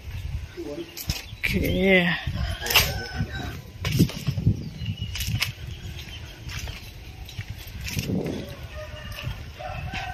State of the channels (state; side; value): identical; both; correlation 1.00